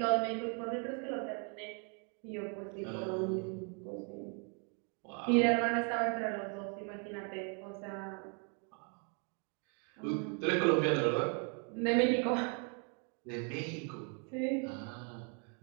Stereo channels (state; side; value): quieter; left; 38.6 dB